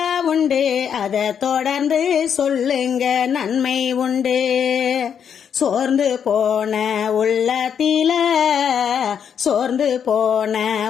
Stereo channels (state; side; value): quieter; right; 7.9 dB